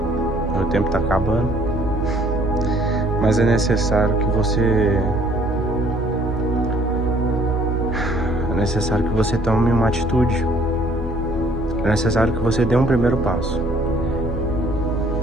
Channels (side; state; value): both; normal; correlation 0.60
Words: meu tempo está acabando. Mas é necessário que você tome uma atitude. É necessário que você dê um primeiro passo.